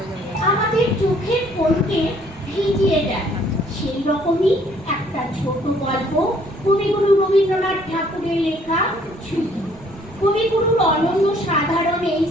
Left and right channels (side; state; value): right; noise; rumble, 23 dB below the sound